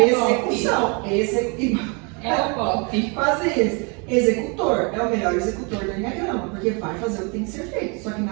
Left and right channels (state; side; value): quieter; left; 33.0 dB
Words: Execução. É o pop. Quase isso. Executor é o melhor executor do Enneagrama, porque vai fazer o que tem que ser feito, só que